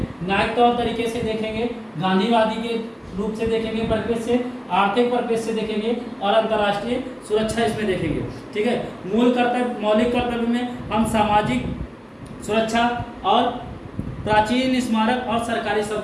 न्यायिक तौर तरीके से देखेंगे, गांधीवादी के रूप से देखेंगे, परिप्रेक्ष्य से, आर्थिक परिप्रेक्ष्य से देखेंगे और अंतर्राष्ट्रीय सुरक्षा इसमें देखेंगे। ठीक है, मौलिक कर्तव्य में हम सामाजिक सुरक्षा और प्राचीन स्मारक और सरकारी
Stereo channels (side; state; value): both; identical; correlation 1.00